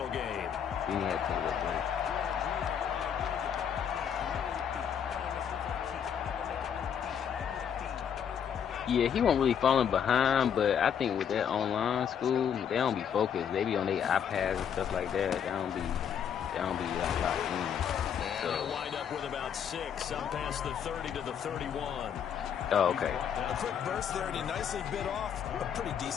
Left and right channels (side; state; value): right; quieter; 8.2 dB